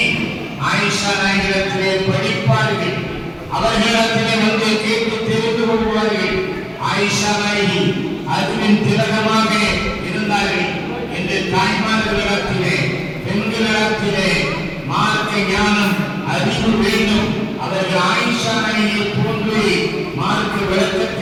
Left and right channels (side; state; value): both; identical; correlation 1.00